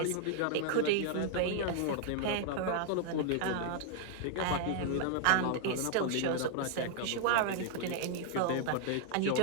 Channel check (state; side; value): different; both; correlation -0.01